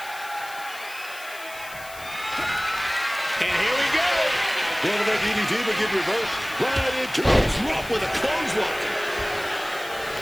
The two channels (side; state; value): left; noise; hiss, 16 dB below the sound